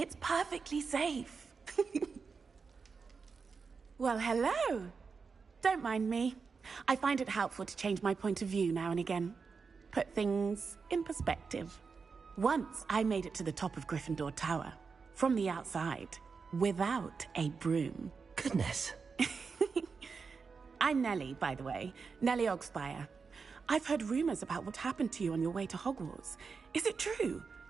perfectly safe. Well, hello. Don't mind me. I find it helpful to change my point of view now and again. Put things in perspective. Once I made it to the top of Gryffindor Tower, from the outside, without a broom. Goodness. I'm Nellie, by the way. Nellie Ogspire. I've heard rumors about what happened to you on your way to Hogwarts. Is it true?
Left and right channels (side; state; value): left; quieter; 5.1 dB